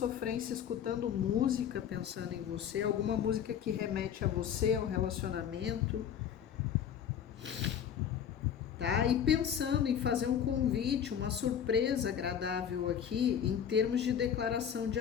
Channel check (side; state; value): right; quieter; 8.7 dB